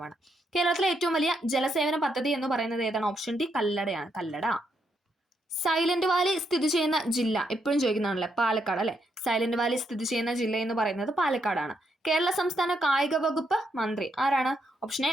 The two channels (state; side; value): normal; both; correlation 0.78